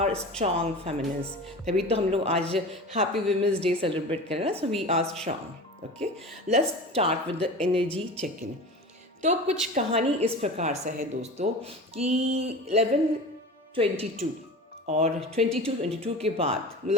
स्ट्रांग फेमिनिन्स, तभी तो हम लोग आज हैप्पी वुमेंस डे सेलिब्रेट कर रहे हैं। So we are strong. Okay, let's start with the energy check in. तो कुछ कहानी इस प्रकार से है दोस्तों कि 11:22 और 22:22 के बाद,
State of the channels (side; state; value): both; normal; correlation 0.33